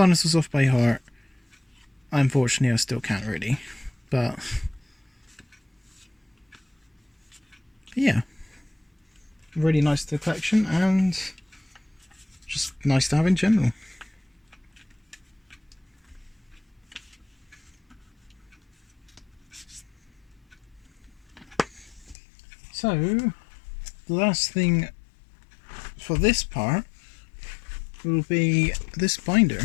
off by heart, unfortunately I still can't really, but yeah. Really nice to the collection and just nice to have in general. So, the last thing for this part will be this binder.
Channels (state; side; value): drops out; right; at 22.2 s